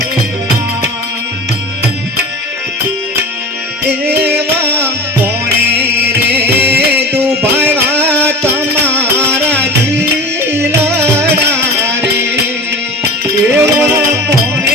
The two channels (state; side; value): normal; both; correlation 0.33